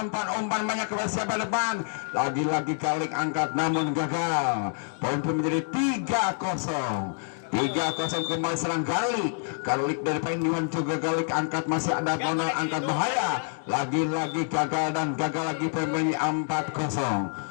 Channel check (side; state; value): right; silent; 60 dB below the other